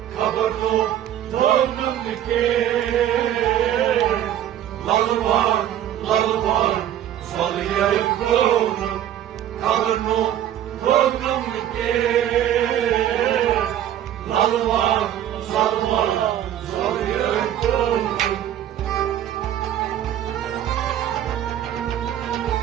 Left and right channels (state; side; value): quieter; left; 11.2 dB